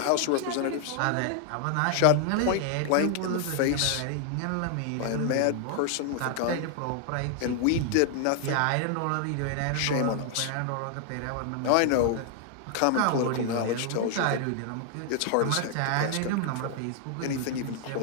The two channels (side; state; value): both; different; correlation 0.00